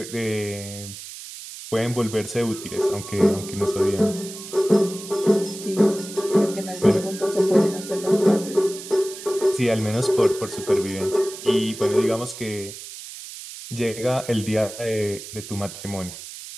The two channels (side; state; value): right; noise; hiss, 12 dB below the sound